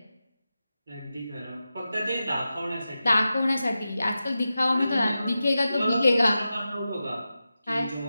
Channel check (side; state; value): both; inverted; correlation -0.92